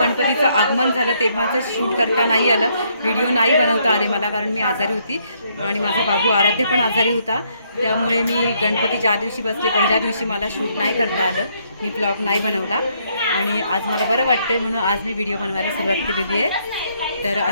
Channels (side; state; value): both; inverted; correlation -0.71